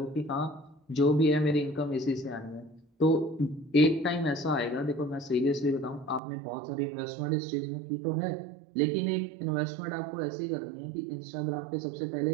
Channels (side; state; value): left; drops out; at 6.2 s